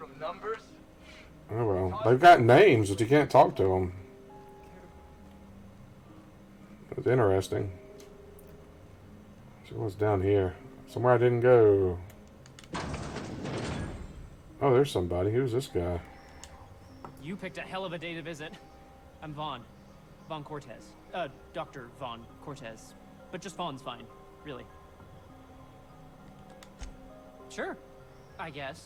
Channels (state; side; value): identical; both; correlation 1.00